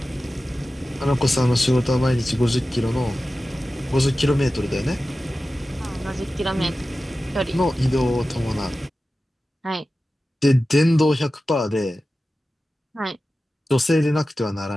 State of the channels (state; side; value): normal; both; correlation 0.95